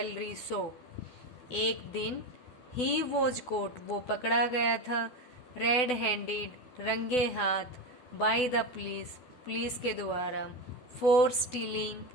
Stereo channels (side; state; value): right; late; 12 ms